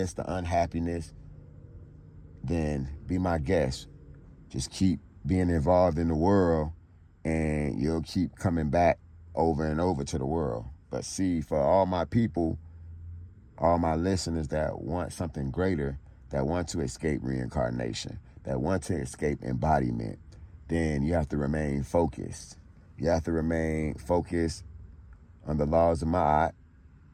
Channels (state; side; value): identical; both; correlation 1.00